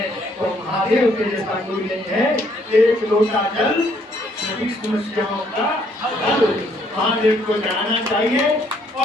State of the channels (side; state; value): both; normal; correlation 0.67